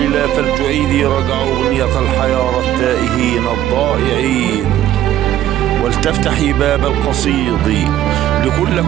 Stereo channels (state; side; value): quieter; left; 12.5 dB